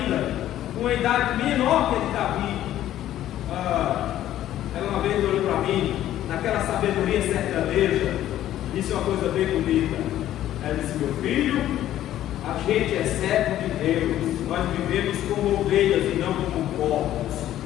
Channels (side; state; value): right; quieter; 12.7 dB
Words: com uma idade menor que a de Davi, ela uma vez olhou para mim, naquela sabedoria sertaneja, disse uma coisa bem bonita. Ela disse: meu filho, a gente é servo de Deus, nós vivemos como ovelhas e não como porcos.